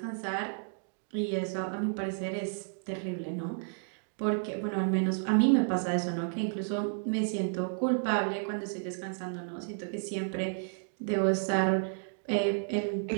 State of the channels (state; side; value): silent; left; digital silence